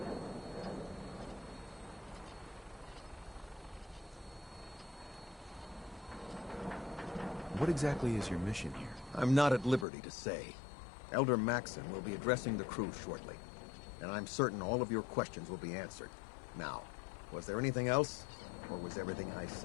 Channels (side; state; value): right; drops out; at 9.9 s